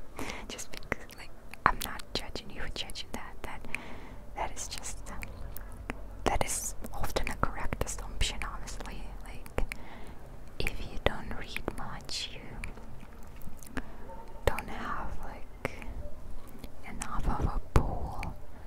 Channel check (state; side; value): identical; both; correlation 1.00